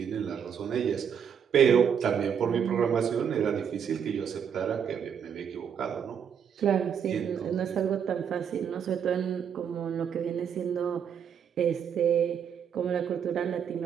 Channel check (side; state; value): left; quieter; 7.8 dB